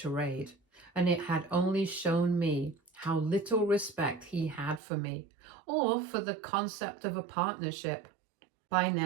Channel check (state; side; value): drops out; left; at 4.8 s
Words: and it had only shown me how little respect he had for me, or for the concept of a partnership. By